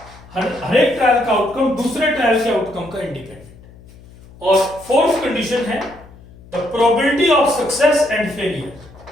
हर एक ट्रायल का आउटकम दूसरे ट्रायल के आउटकम का इंडिपेंडेंट. और फोर्थ कंडीशन है the probability of success and failure.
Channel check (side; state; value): left; noise; hum, 22 dB below the sound